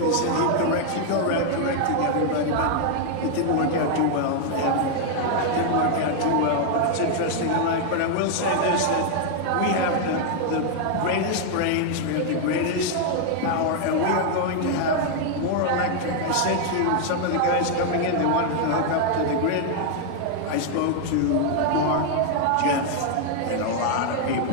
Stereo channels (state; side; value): different; both; correlation 0.00